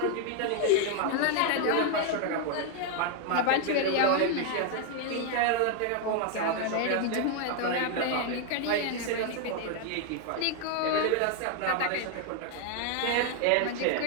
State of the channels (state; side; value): different; both; correlation 0.00